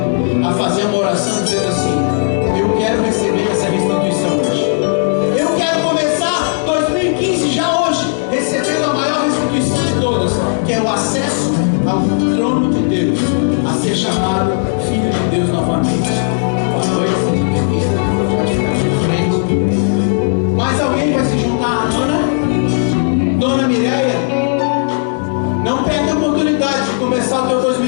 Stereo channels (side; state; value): right; silent; digital silence